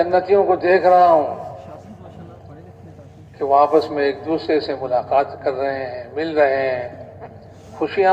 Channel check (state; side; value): identical; both; correlation 1.00